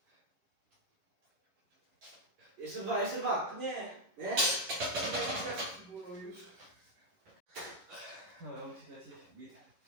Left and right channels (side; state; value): left; late; 11 ms